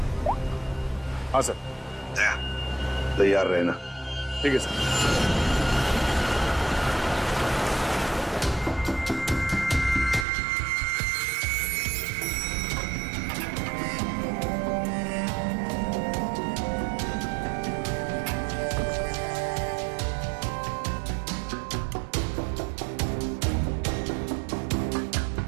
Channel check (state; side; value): drops out; left; at 10.2 s